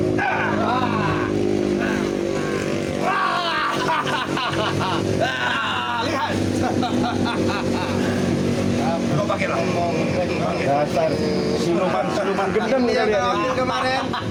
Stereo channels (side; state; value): both; identical; correlation 1.00